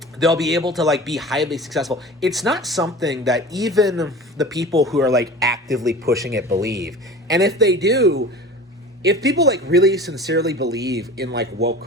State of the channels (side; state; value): both; normal; correlation 0.38